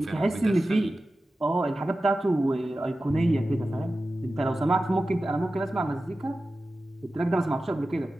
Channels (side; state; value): both; normal; correlation 0.94